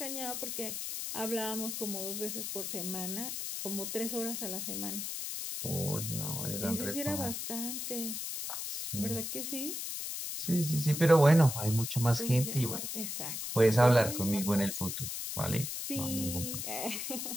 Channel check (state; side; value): noise; left; hiss, 4 dB below the sound